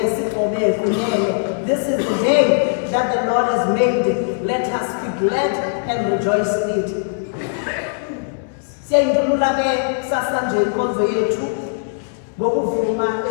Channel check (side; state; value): right; silent; digital silence